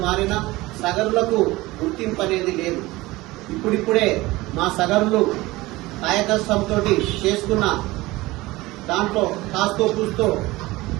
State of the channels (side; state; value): left; quieter; 19.9 dB